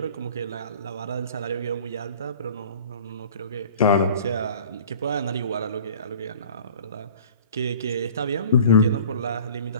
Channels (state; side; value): inverted; both; correlation -0.45